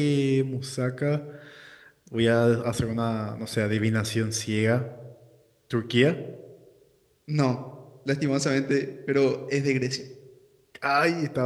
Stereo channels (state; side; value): identical; both; correlation 1.00